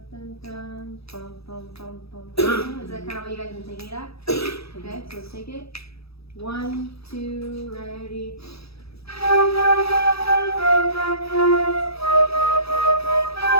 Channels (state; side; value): late; right; 0.77 ms